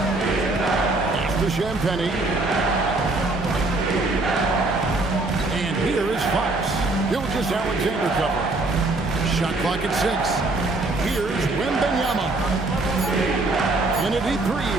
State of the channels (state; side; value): quieter; left; 3.1 dB